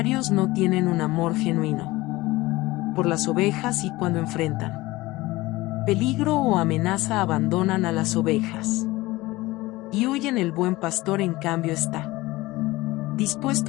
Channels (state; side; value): quieter; right; 19.6 dB